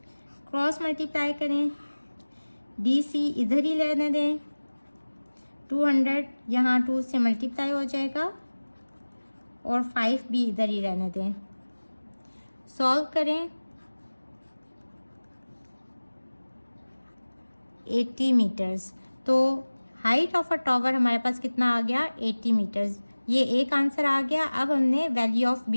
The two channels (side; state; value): both; inverted; correlation -1.00